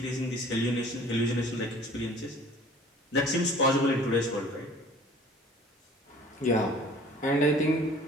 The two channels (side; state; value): both; normal; correlation 0.49